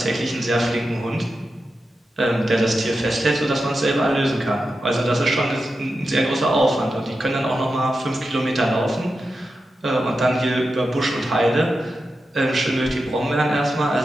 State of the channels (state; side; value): normal; both; correlation 0.90